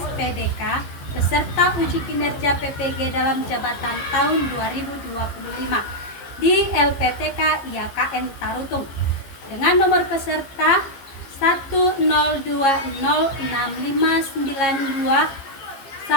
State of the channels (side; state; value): right; late; 15 ms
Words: peserta uji kinerja PPG dalam jabatan tahun 2025 di LPTK IAKN Tarutung dengan nomor peserta 102065921880001